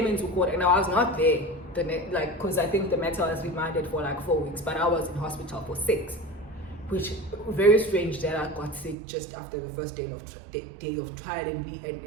into court and I was not there, because I think the matter was remanded for like 4 weeks, but I was in hospital for 6, which very strange that I got sick just after the first day of trial and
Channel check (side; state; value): left; drops out; at 9.0 s